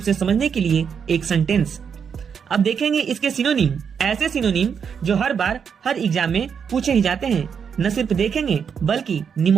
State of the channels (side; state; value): left; quieter; 6.9 dB